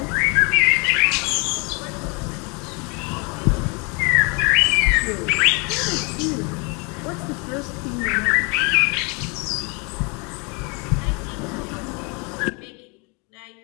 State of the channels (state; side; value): quieter; right; 31.8 dB